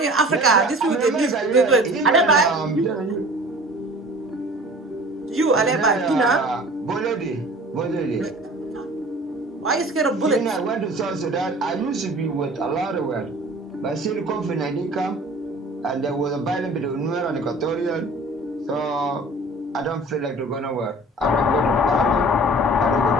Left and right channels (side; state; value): both; normal; correlation 0.45